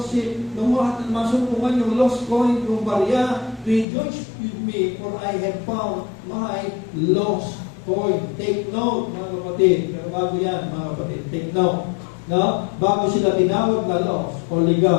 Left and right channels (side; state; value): right; drops out; at 3.9 s